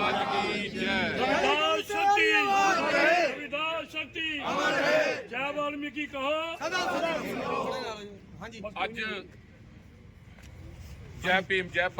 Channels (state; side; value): identical; both; correlation 1.00